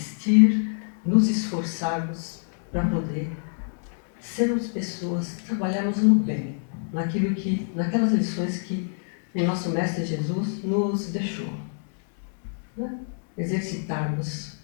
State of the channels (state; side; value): silent; right; digital silence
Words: nos esforçarmos para poder sermos pessoas, trabalharmos no bem, naquelas lições que o nosso Mestre Jesus nos deixou, né? Exercitarmos